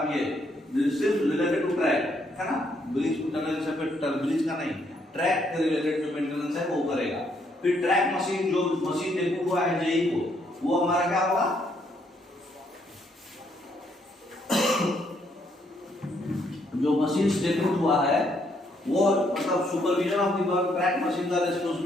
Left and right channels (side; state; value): both; normal; correlation 0.72